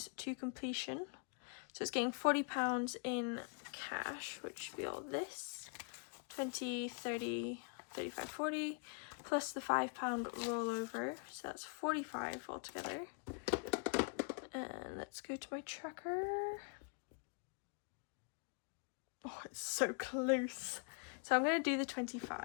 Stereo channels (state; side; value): quieter; right; 39.8 dB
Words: to completion. So it's getting £40 in cash, which should be all this. 20, 30, 35, 40, plus the £5 rollover. So that's 45 altogether. And let's go to my tracker. Oh, it's so close. So I'm going to do the